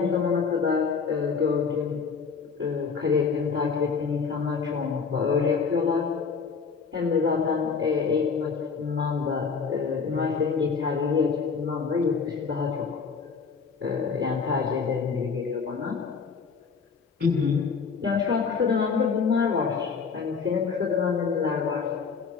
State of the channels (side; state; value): right; quieter; 5.5 dB